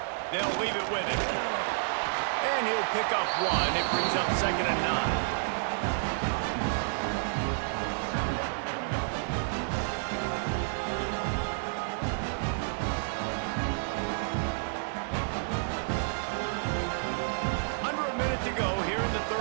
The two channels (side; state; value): left; silent; digital silence